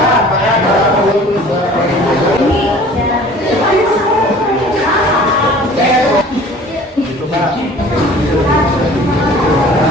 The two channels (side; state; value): both; normal; correlation 0.47